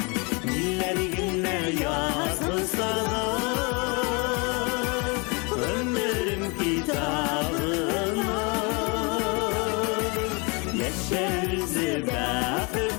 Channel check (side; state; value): right; quieter; 30.6 dB